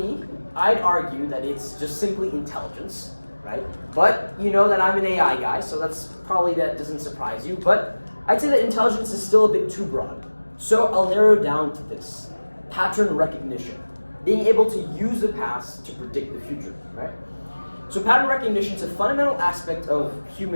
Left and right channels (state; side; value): inverted; both; correlation -1.00